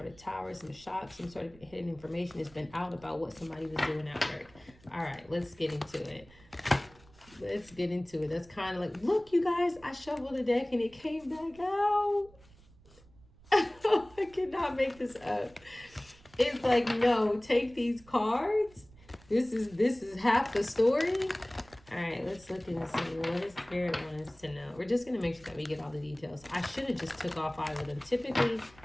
of tower, some shock, some sort of hidden information has been out about what somebody was doing at work. All right, let's get into it. Let's get into it. That's kind of like, look, you guys, I shuffled the deck and it came back out. I cannot make this up. It's like, no, take these cards. This is half the story. All right, let's look and see what does Spirit want us to know. We're just going to make sure that we get all the details. I should have just took all 5 of them. Typically,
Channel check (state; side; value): noise; right; rumble, 25 dB below the sound